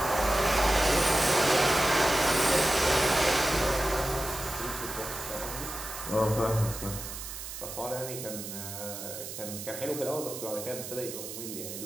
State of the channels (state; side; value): noise; right; hiss, 9 dB below the sound